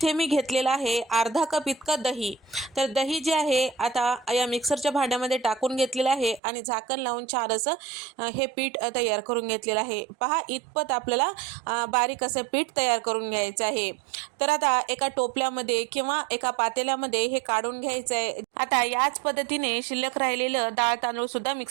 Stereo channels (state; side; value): drops out; left; at 6.4 s